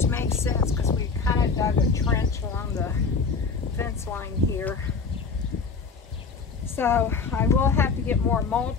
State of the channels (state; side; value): quieter; right; 5.0 dB